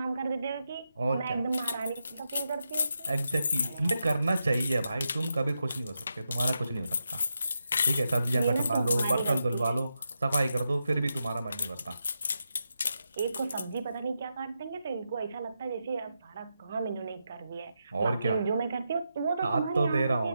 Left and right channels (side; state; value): both; inverted; correlation -0.86